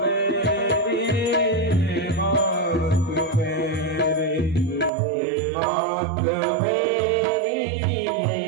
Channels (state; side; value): drops out; left; at 4.9 s